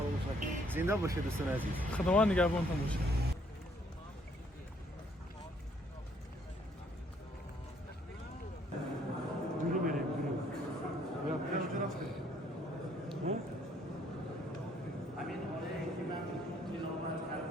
накунед. Зинда бошед дӯстони азиз. Худованд нигаҳбонтон бошад.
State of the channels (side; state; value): both; normal; correlation 0.66